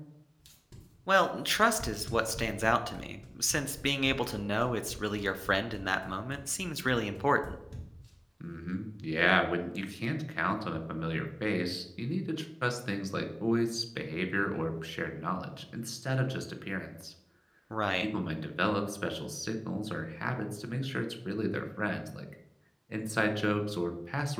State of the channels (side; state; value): both; identical; correlation 1.00